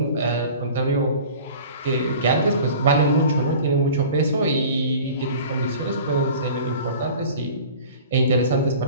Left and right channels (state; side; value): inverted; both; correlation -0.42